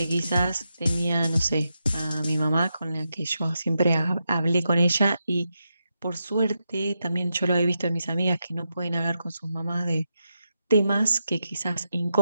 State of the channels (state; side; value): inverted; both; correlation -0.86